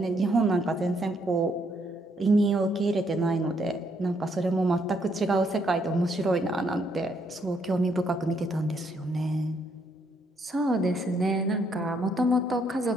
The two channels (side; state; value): both; normal; correlation 0.72